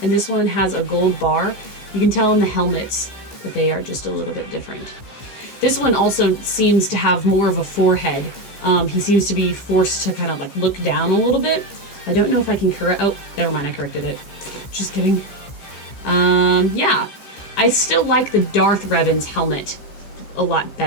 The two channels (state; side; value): late; right; 15 ms